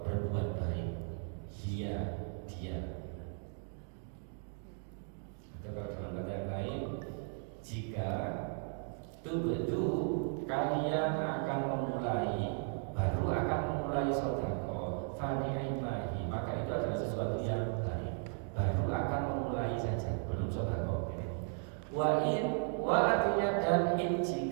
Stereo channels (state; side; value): silent; left; 54 dB below the other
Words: berbuat baik dia atau kalau dalam kata yang lain jika tubadu kalian akan memulai sedekah fani'imahi maka itu adalah sesuatu yang baik baru akan memulai saja belum sedekah ini wa artinya dan in